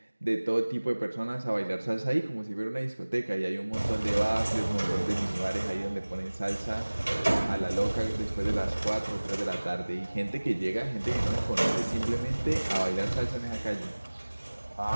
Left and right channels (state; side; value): inverted; both; correlation -1.00